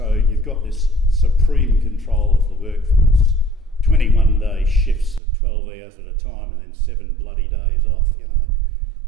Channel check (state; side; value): drops out; left; at 5.2 s